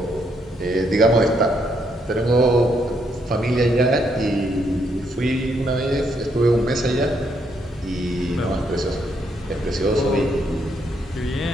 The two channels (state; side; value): normal; both; correlation 0.74